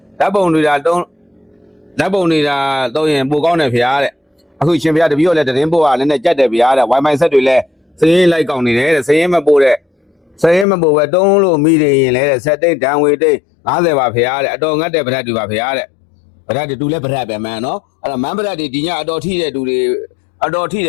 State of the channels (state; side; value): drops out; right; at 10.7 s